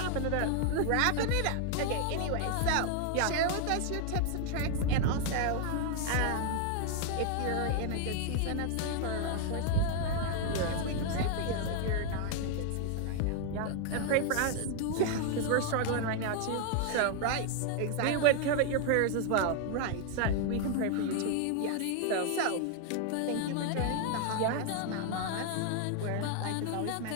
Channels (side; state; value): both; different; correlation 0.00